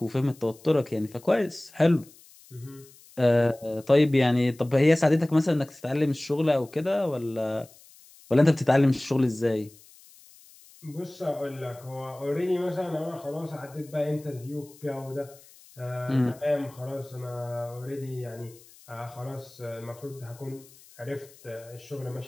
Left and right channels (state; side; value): noise; left; hiss, 24 dB below the sound